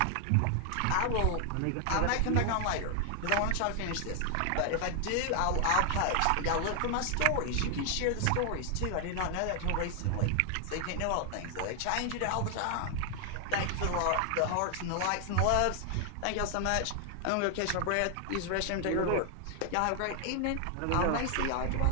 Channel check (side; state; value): both; different; correlation 0.00